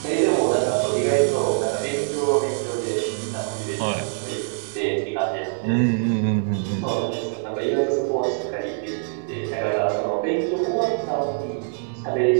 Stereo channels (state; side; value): silent; left; digital silence